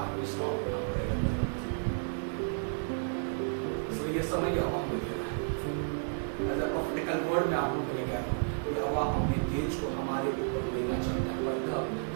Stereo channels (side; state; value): left; silent; 56 dB below the other